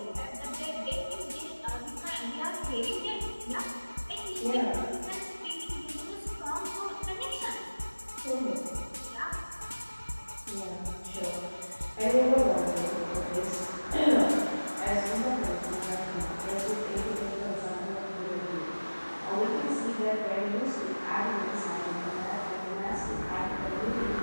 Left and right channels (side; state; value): both; inverted; correlation -1.00